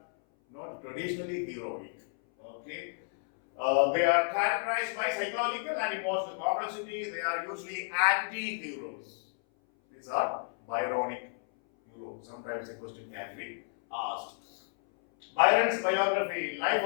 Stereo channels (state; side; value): silent; right; 57 dB below the other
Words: not traditionally heroic. Okay. They are characterized by psychological and emotional complexity. They are usually anti-heroes. These are Byronic heroes. Sometimes a question can be asked. Byron's biography, Life